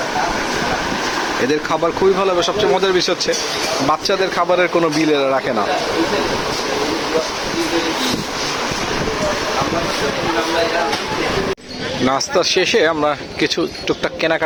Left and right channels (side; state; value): both; identical; correlation 1.00